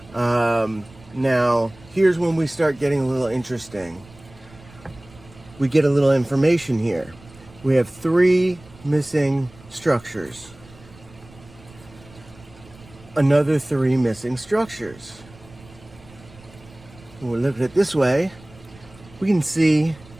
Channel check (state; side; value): noise; right; rumble, 23 dB below the sound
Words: Now here's when we start getting a little interesting. We get a little information here. We have 3 missing structures. Another 3 missing structures. When we look at it this way, we can see